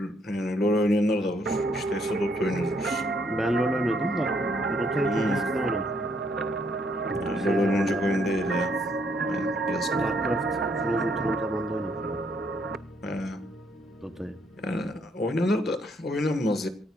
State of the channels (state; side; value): normal; both; correlation 0.70